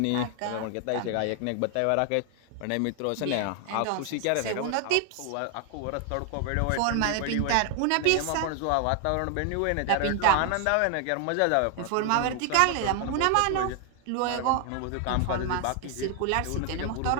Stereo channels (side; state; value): both; different; correlation 0.00